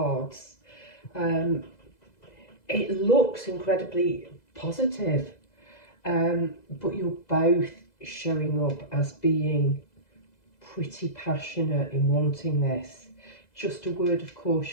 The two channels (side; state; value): right; late; 2.0 ms